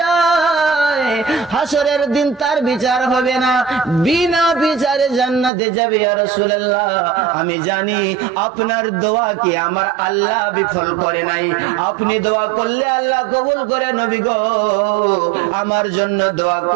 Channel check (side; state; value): left; drops out; at 5.5 s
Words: হাসরের দিন তার বিচার হবে না, বিনা বিচারে জান্নাতে যাবে। ইয়া রাসূলুল্লাহ, আমি জানি আপনার দোয়া কি আমার আল্লাহ বিফল করে নাই, আপনি দোয়া করলে আল্লাহ কবুল করে। নবী গো, আমার জন্য দোয়া